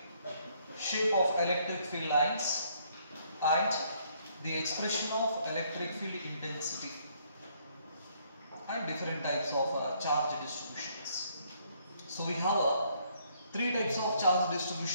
shape of electric field lines, and the expression of electric field intensity and different types of charge distributions. So we have three types of charge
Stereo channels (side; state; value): both; inverted; correlation -0.67